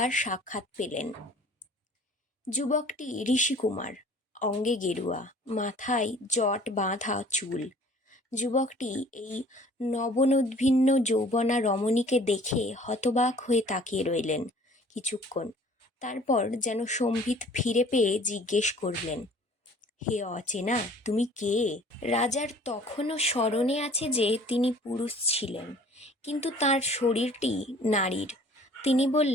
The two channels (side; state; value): both; normal; correlation 0.51